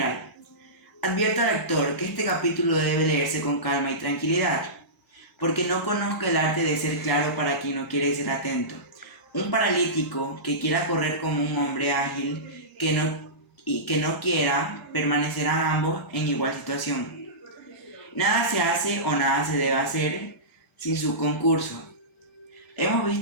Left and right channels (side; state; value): both; normal; correlation -0.19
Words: Advierto al lector que este capítulo debe leerse con calma y tranquilidad, porque no conozco el arte de ser claro para quien no quiere ser atento. Un paralítico que quiera correr como un hombre ágil que no quiera, permanecerán ambos en igual situación. Nada se hace o nada se debe hacer sin su concurso. Hemos